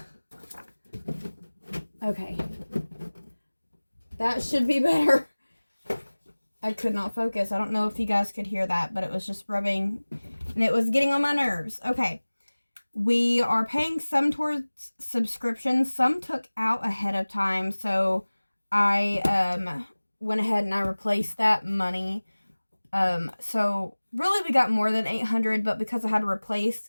Okay, that should be better. I could not focus. I don't know if you guys could hear that, but it was just rubbing and it was getting on my nerves. Okay. We are paying some towards subscriptions. Some took out ahead of time. So I went ahead and I replaced that money. So really we got more than $800, but because I had to replace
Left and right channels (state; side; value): inverted; both; correlation -1.00